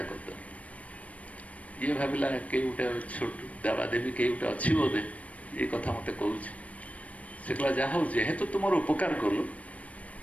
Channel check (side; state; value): right; late; 0.066 ms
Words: କରିଦେଲୁ। ଇଏ ଭାବିଲା କେହି ଗୋଟେ ଛୋଟ ଦେବାଦେବୀ କେହି ଗୋଟେ ଅଛି ବୋଧେ, ଏ କଥା ମୋତେ କହୁଛି। ସେ କହିଲା ଯାହା ହଉ ଯେହେତୁ ତୁ ମୋର ଉପକାର କଲୁ,